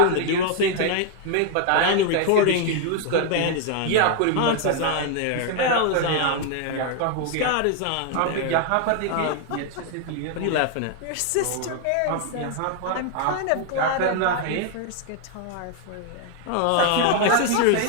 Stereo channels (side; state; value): both; different; correlation 0.00